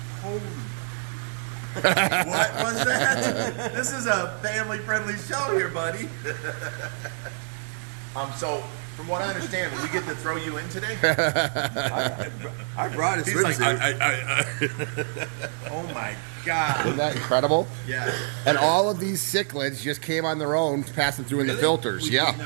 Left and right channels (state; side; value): silent; left; digital silence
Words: Holy. What was that? This is a family-friendly show here, buddy. So, from what I understand, we get to throw you in today? I brought a He's like, swimsuit. Oh my God. Isn't that incredible? Yeah. And all of these cichlids just came on their own, passing through in the filters. We Yeah. did